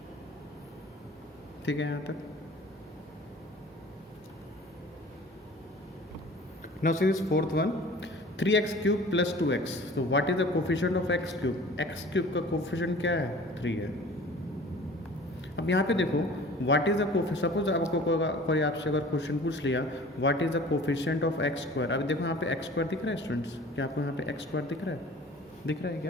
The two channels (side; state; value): both; normal; correlation 0.45